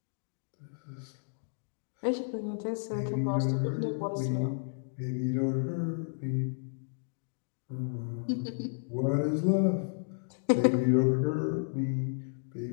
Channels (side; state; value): right; silent; digital silence